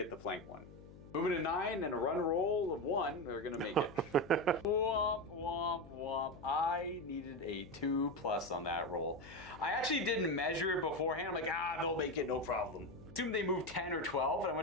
the flank one. Moving to 9 and a run roll of 1, we're going to make it. Womp, womp, womp. I needed a 2+ on that roll. I actually didn't measure it beforehand. I'm like, they'll make it, no problem. Assume they moved 10 or 12, and I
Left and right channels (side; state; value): left; noise; hum, 18 dB below the sound